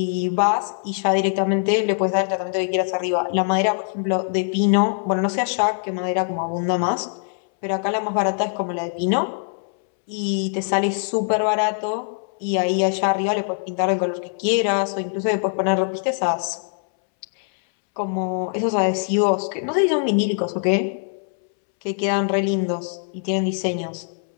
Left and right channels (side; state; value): right; silent; 64 dB below the other